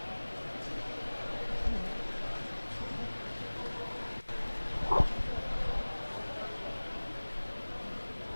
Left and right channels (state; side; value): inverted; both; correlation -1.00